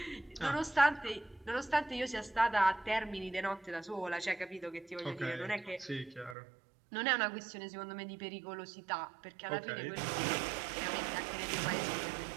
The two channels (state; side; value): drops out; left; at 6.4 s